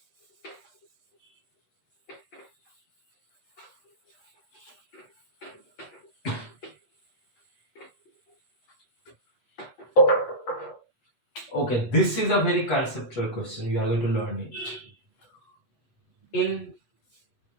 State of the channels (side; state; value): right; late; 8.2 ms